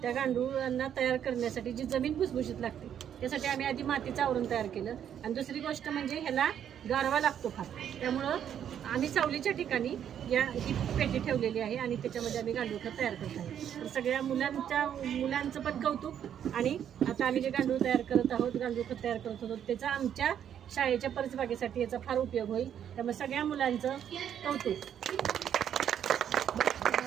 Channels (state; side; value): quieter; left; 9.4 dB